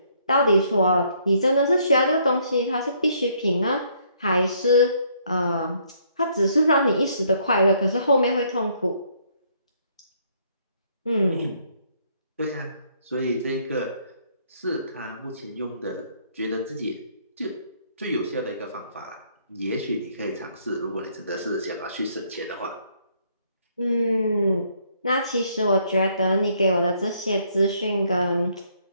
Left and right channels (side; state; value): both; inverted; correlation -0.68